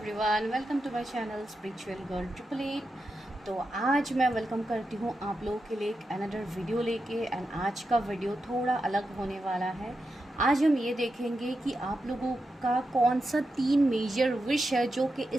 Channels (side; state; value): both; normal; correlation 0.88